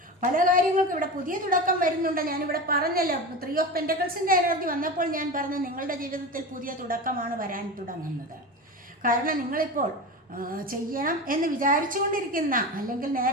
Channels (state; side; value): normal; both; correlation 0.26